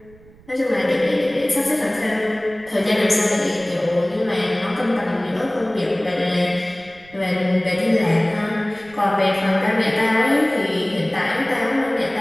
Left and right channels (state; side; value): noise; right; rumble, 25 dB below the sound